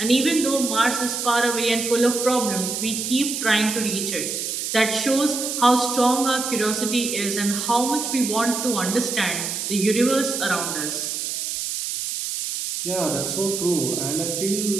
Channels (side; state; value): right; noise; hiss, 3 dB below the sound